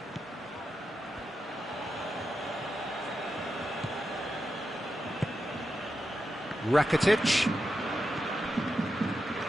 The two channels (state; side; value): normal; both; correlation 0.88